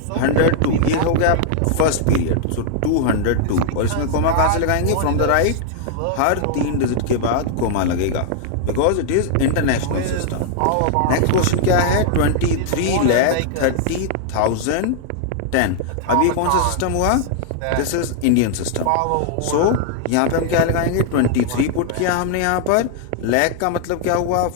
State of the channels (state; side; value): different; both; correlation -0.01